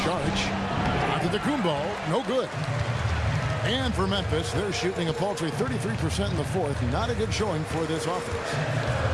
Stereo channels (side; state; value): both; identical; correlation 1.00